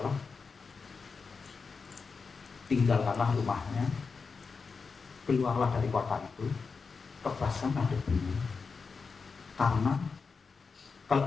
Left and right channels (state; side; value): quieter; right; 4.9 dB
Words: tinggalkanlah rumahnya, keluarlah dari kota itu, tebaskanlah debunya. Karena